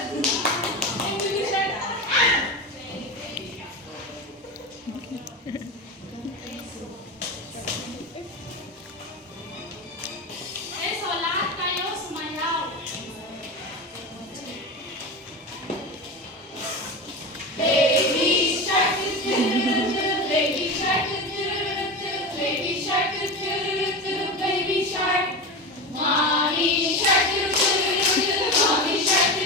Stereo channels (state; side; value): normal; both; correlation 0.23